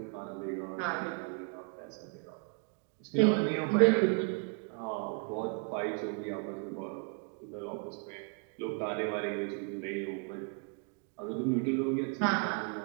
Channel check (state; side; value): quieter; left; 36.5 dB